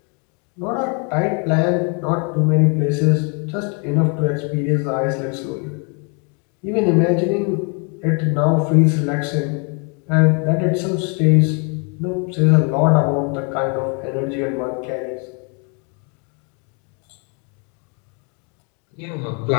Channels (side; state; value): right; quieter; 36.1 dB